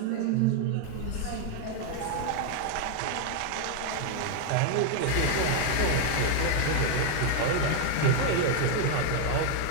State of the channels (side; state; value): both; different; correlation 0.00